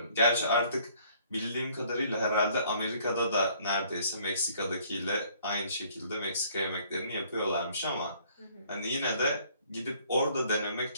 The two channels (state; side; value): inverted; both; correlation -0.60